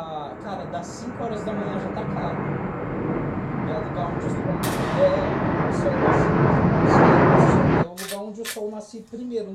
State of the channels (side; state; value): both; identical; correlation 1.00